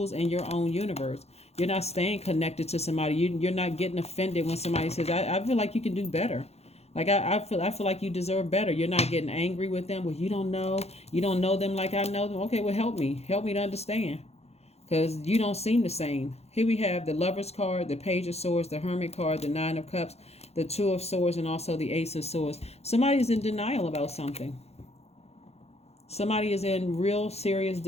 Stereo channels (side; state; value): right; late; 0.31 ms